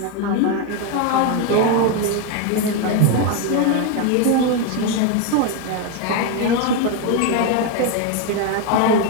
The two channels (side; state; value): both; different; correlation 0.02